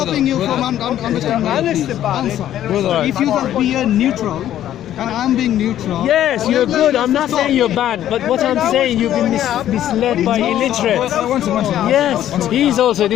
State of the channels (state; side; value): quieter; right; 11.8 dB